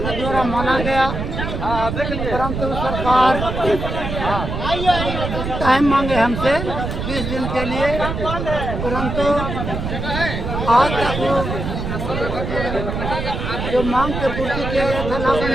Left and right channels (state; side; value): noise; right; rumble, 4 dB below the sound